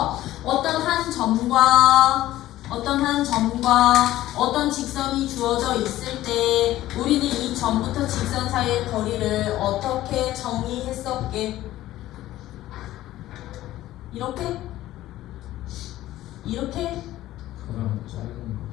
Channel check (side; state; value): right; quieter; 14.9 dB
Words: 어떤 한 점과 어떤 직선이 주어져 있을 때 우리는 이 점부터 직선 사이의 거리를 어떻게 정의했었게? 이렇게? 이렇게? 그럼 짧은